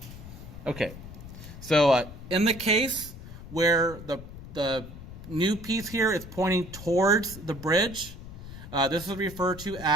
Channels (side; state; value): left; noise; rumble, 13 dB below the sound